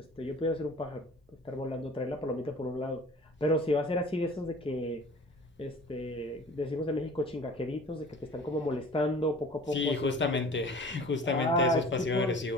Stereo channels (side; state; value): both; normal; correlation 0.45